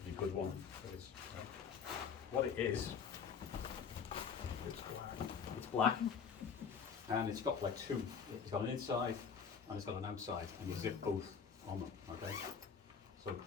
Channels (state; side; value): quieter; right; 6.5 dB